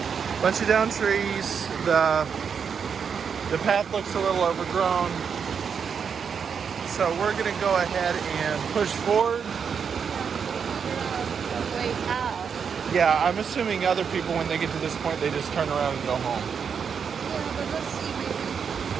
The path looks a little overgrown. So we're gonna go ahead and push forward. A way out. Yeah, I'm assuming other people, when they get to this point, they just turn around and go home. Yeah, but let's see, maybe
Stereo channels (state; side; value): quieter; left; 6.7 dB